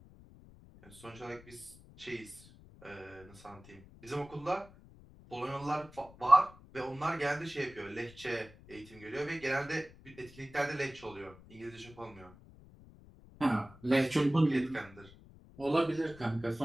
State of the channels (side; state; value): left; noise; rumble, 21 dB below the sound